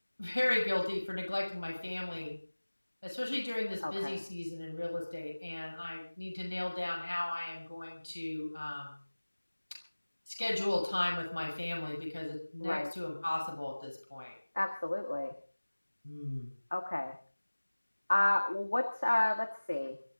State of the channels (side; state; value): both; inverted; correlation -1.00